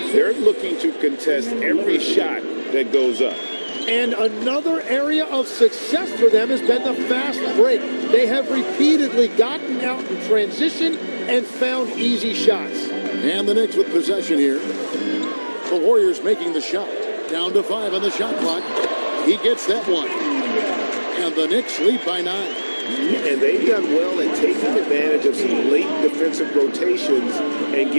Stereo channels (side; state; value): both; inverted; correlation -1.00